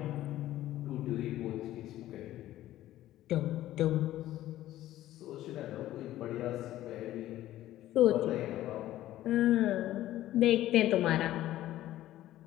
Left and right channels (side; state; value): right; quieter; 14.2 dB